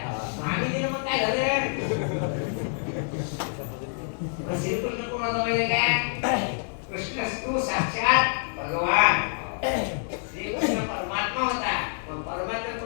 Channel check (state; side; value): silent; right; digital silence